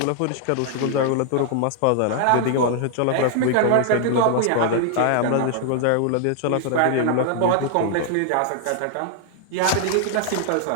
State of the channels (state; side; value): different; both; correlation 0.00